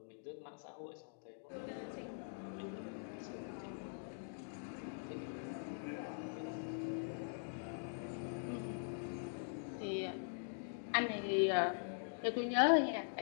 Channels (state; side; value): silent; right; digital silence